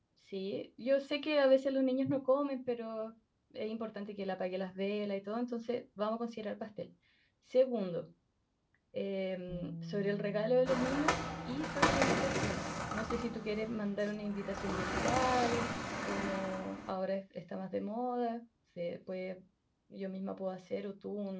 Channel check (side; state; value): both; identical; correlation 1.00